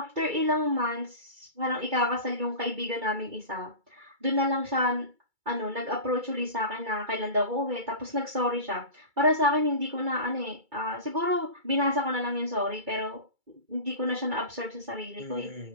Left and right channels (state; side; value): late; left; 2.3 ms